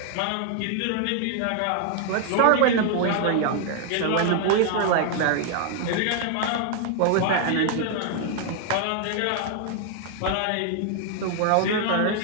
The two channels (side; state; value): both; different; correlation 0.00